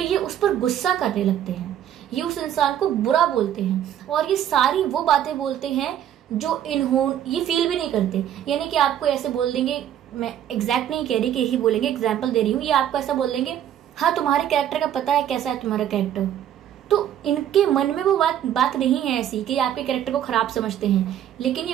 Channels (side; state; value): left; quieter; 10.6 dB